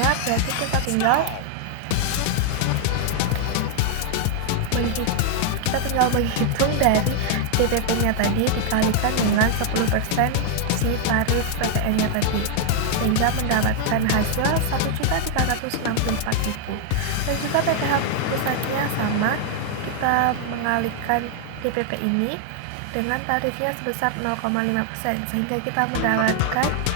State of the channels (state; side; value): different; both; correlation 0.00